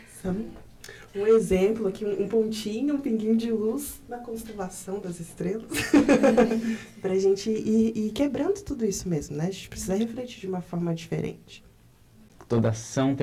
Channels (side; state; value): both; identical; correlation 1.00